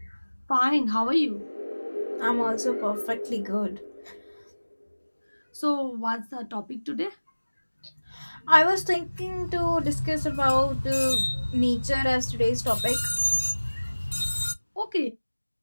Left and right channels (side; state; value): both; inverted; correlation -1.00